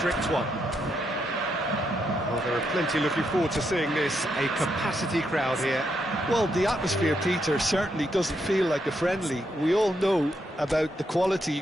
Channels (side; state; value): both; normal; correlation 0.79